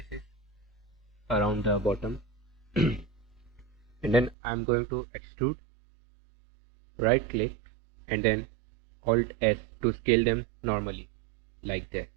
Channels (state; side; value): drops out; left; at 4.4 s